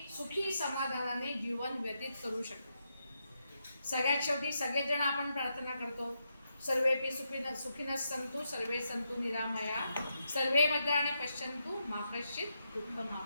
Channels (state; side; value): inverted; both; correlation -0.83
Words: सुखी समाधानाने जीवन व्यतीत करू शकतो. सगळ्यात शेवटी सगळेजण आपण प्रार्थना करतो, सर्वेपि सुखिनः सन्तु सर्वे सन्तु निरामया सर्वे भद्राणि पश्यन्तु मा कश्चित्